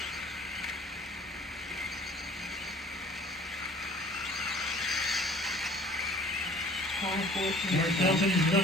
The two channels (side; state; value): both; normal; correlation 0.50